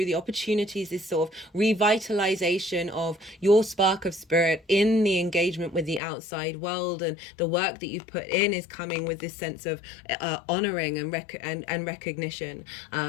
the opportunities, this sort of revitalization of your spark of spirit in the engagement with the outside world, and the work that you've put in is coming with this sense of honoring and recognition,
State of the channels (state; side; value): drops out; right; at 6.0 s